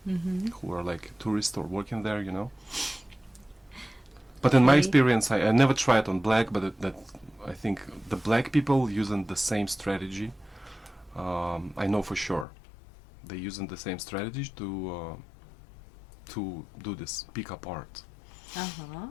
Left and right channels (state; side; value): drops out; right; at 12.5 s